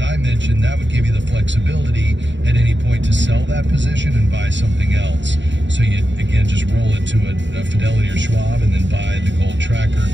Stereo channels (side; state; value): left; late; 0.53 ms